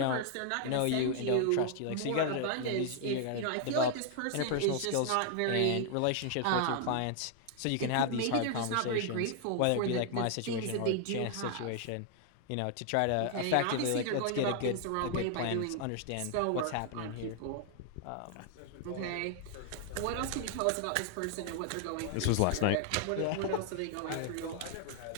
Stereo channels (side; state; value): both; different; correlation 0.00